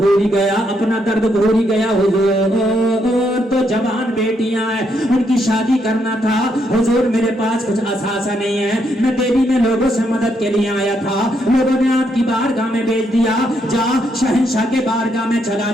ہی گیا، اپنا درد بھول ہی گیا۔ حضور تو جوان بیٹیاں ہیں، ان کی شادی کرنا تھا، حضور میرے پاس کچھ اثاثہ نہیں ہے، میں دہلی میں لوگوں سے مدد کے لیے آیا تھا، لوگوں نے آپ کی بارگاہ میں بھیج دیا، جا شہنشاہ کے بارگاہ میں چلا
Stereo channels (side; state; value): both; normal; correlation 0.76